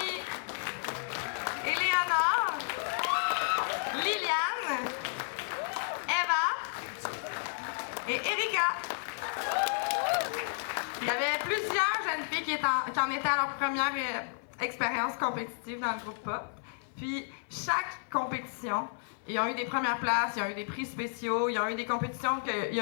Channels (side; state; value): right; silent; 56 dB below the other